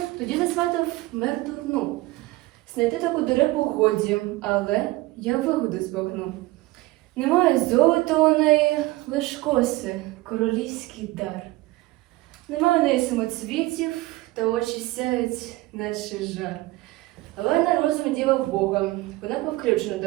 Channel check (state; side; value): quieter; left; 19.7 dB